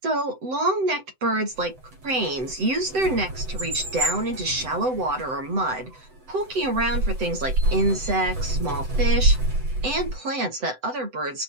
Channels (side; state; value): left; late; 7.9 ms